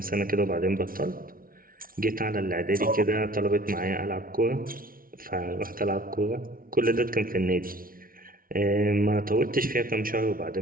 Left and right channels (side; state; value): left; late; 0.42 ms